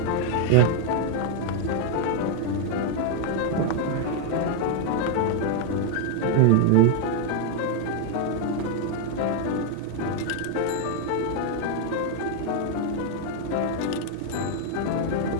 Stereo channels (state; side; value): different; both; correlation 0.00